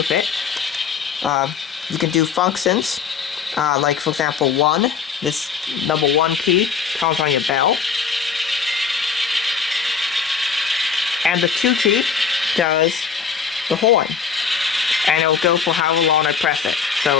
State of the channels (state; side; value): quieter; right; 6.2 dB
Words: it. You can do functions, like for example 1, this number 1 key comes on your bell. And the 2 key does the horn. And it'll go for however long I press it.